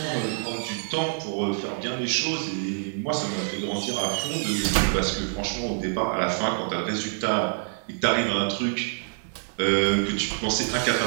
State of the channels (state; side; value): silent; left; 61 dB below the other